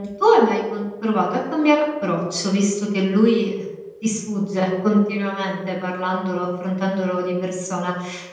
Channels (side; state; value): both; identical; correlation 1.00